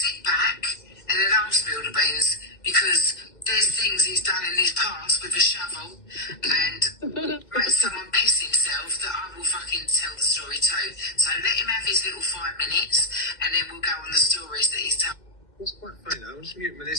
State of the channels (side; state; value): right; late; 2.1 ms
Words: back and then I'll spill the beans, because there's things he's done in his past with a shovel and made someone piss himself that I will fucking tell the story too. So let him have his little 5 minutes and then we'll go on the stories that he's told. What's quite funny though, I was mute